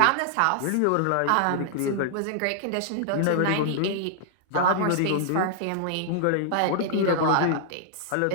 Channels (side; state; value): both; different; correlation -0.01